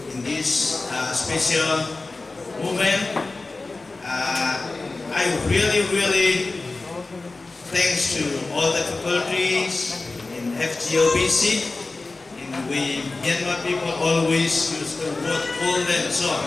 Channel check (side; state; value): right; quieter; 3.5 dB